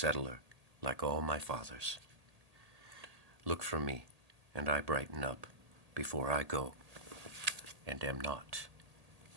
like all my fathers. Look for me, and I brighten up before I go, and am not.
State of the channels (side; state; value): left; late; 1.8 ms